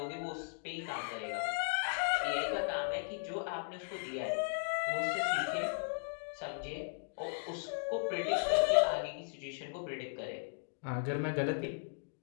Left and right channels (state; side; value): silent; right; digital silence